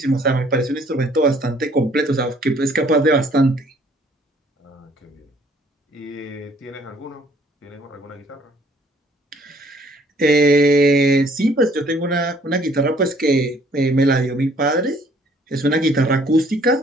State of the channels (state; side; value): normal; both; correlation 0.60